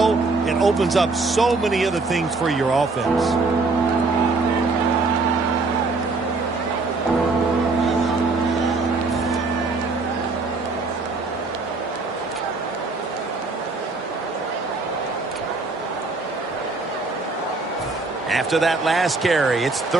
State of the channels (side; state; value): left; quieter; 3.7 dB